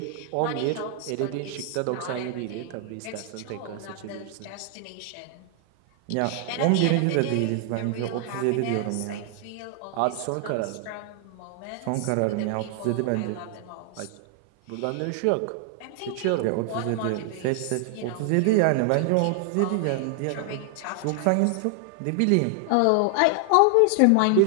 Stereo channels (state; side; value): different; both; correlation 0.00